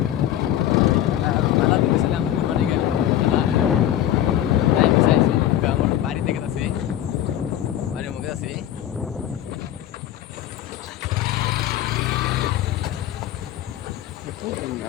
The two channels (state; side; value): quieter; right; 12.0 dB